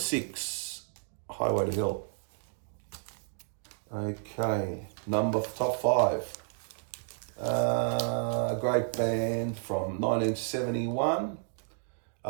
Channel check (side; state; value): left; silent; digital silence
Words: Highway to Hell. Okay, top five. A great band from 1971.